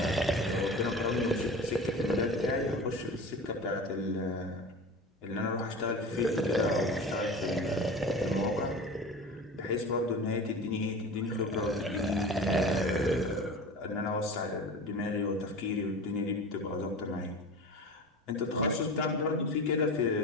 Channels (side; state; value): both; normal; correlation 0.33